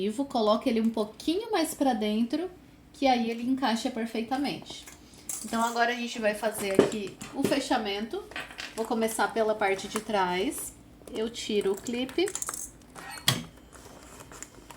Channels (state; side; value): identical; both; correlation 1.00